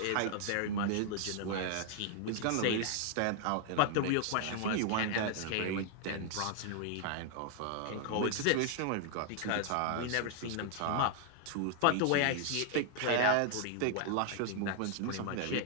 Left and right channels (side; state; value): both; different; correlation 0.00